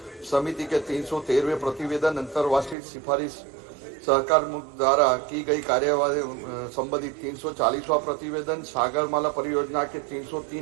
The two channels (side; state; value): left; drops out; at 2.8 s